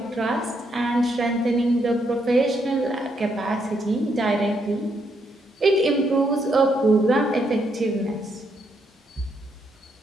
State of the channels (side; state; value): both; normal; correlation 0.76